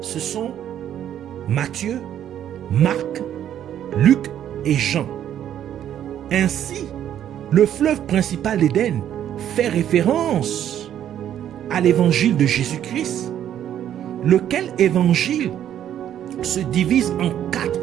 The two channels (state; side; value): quieter; left; 10.5 dB